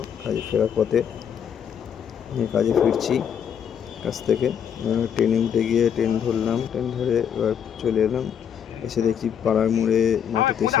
কাজে ফেরার পথে কাজে ফিরছি কাছ থেকে। ট্রেনে উঠে গিয়ে ট্রেন ধরলাম, ট্রেন ধরে এবার চলে এলাম। এসে দেখছি পাড়ার মোড়ে মাঠেতে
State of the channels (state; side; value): quieter; right; 8.3 dB